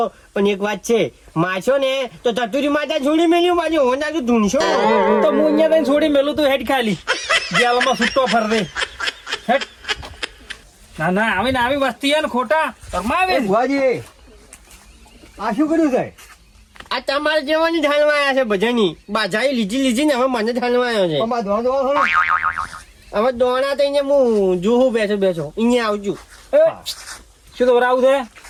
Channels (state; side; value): identical; both; correlation 1.00